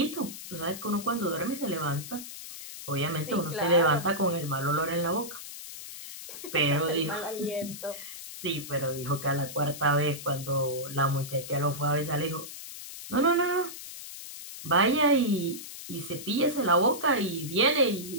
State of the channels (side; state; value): left; noise; hiss, 11 dB below the sound